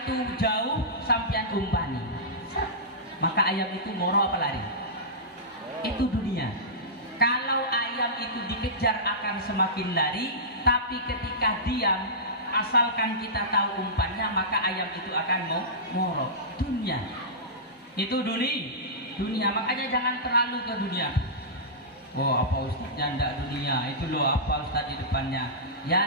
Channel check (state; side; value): normal; both; correlation -0.17